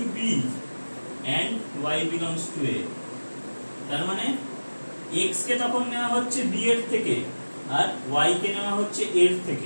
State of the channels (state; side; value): inverted; both; correlation -1.00